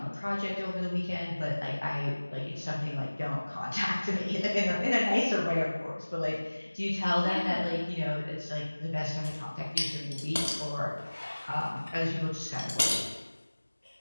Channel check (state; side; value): inverted; both; correlation -1.00